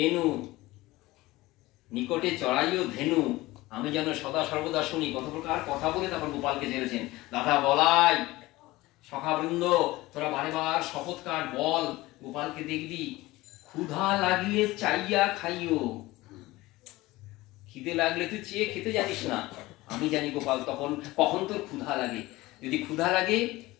নিকটে চড়াইও ধেনু, আমি যেন সদা সর্বদা শুনি। কত প্রকার কথা বলে তারপর গোপালকে ছেড়েছেন। দাদা বলাই, সখাবৃন্দ তোরা বারে বার শপথ কাট, বল গোপালকে দেখবি, ক্ষুধা লাগলে চাইয়া খাইও। খিদে লাগলে তুই চেয়ে খেতে জানিস না, আমি জানি গোপাল তখন কখন তোর ক্ষুধা লাগে। যদি ক্ষুধা লাগে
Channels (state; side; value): quieter; right; 19.3 dB